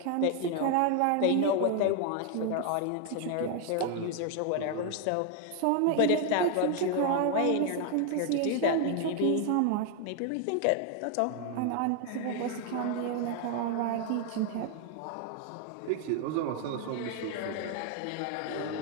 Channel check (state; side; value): different; both; correlation 0.00